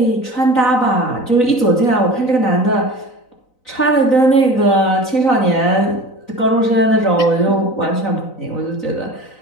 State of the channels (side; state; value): right; late; 4.0 ms